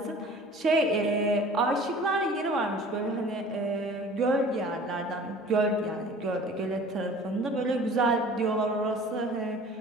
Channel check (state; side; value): normal; both; correlation 0.46